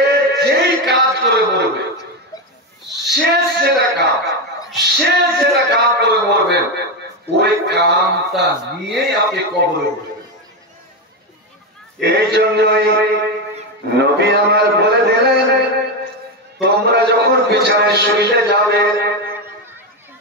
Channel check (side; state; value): both; normal; correlation 0.11